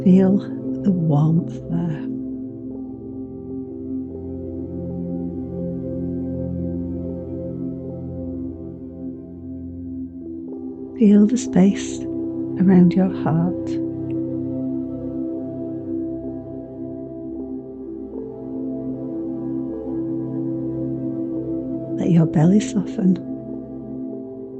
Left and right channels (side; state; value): both; identical; correlation 1.00